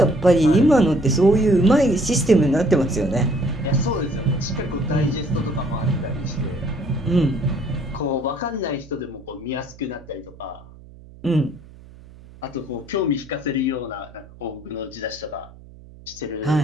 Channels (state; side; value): noise; right; hum, 21 dB below the sound